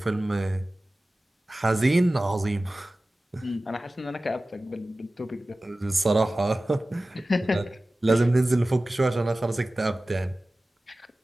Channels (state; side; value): normal; both; correlation 0.96